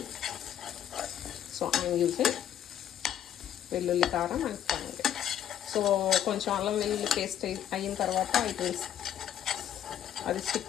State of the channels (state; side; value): quieter; right; 10.5 dB